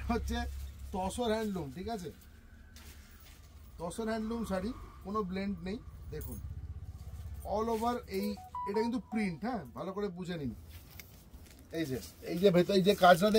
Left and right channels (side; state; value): both; identical; correlation 1.00